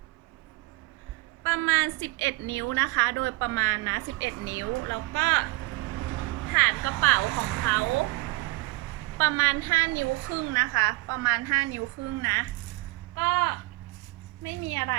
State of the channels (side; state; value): left; quieter; 23.1 dB